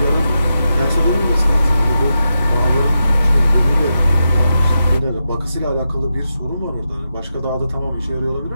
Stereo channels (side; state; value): both; inverted; correlation -0.87